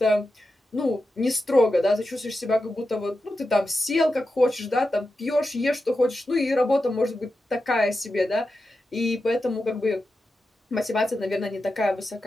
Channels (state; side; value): normal; both; correlation 0.90